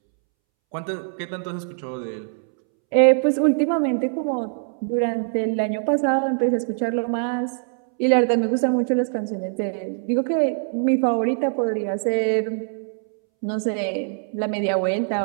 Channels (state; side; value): silent; left; 64 dB below the other